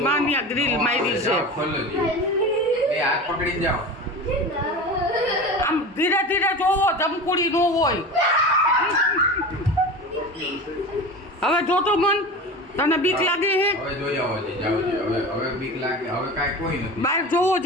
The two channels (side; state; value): both; normal; correlation 0.31